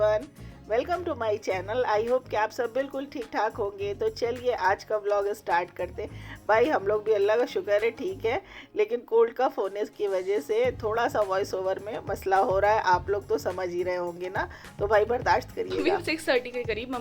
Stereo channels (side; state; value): both; identical; correlation 1.00